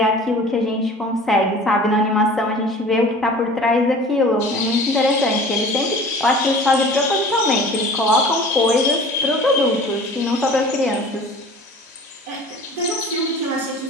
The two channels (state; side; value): normal; both; correlation 0.43